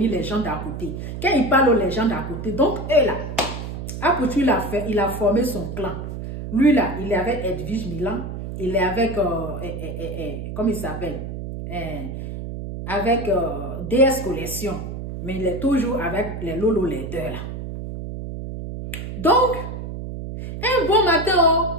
les gens d'à côté. Quand il parle aux gens d'à côté, donc, eux, là, Apuchou, il a formé son clan. Lui, là, il est avec Edwige Milan. Il est avec, comment il s'appelle? Avec DS Collection. Mais il est toujours avec les Lolo Leader, là. Donc, un bon matin,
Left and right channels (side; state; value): right; noise; hum, 7 dB below the sound